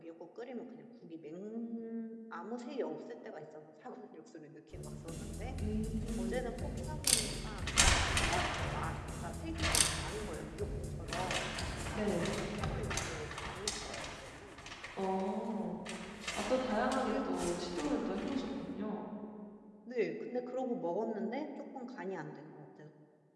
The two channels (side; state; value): both; identical; correlation 1.00